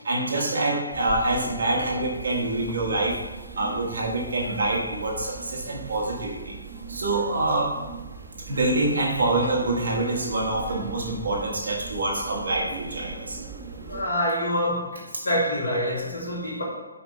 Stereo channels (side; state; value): both; inverted; correlation -0.56